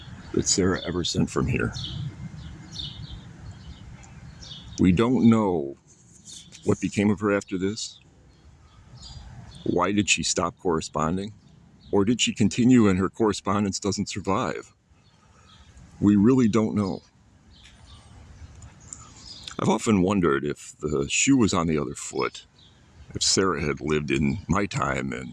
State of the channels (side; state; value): both; identical; correlation 1.00